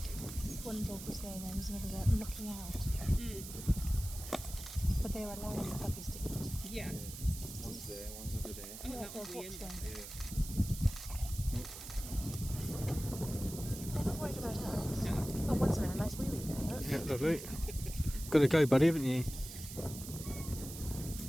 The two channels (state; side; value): noise; right; hiss, 11 dB below the sound